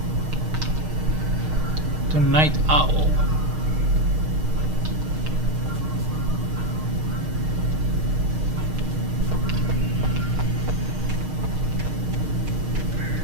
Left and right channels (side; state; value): left; late; 6.5 ms